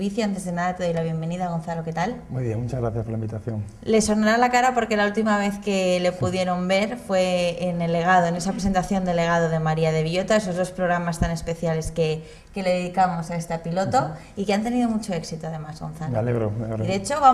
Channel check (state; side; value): identical; both; correlation 1.00